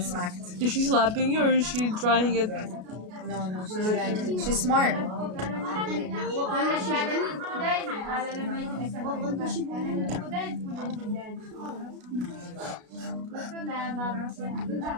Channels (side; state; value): left; late; 33 ms